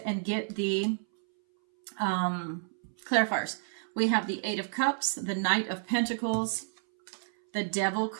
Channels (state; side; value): silent; left; 58 dB below the other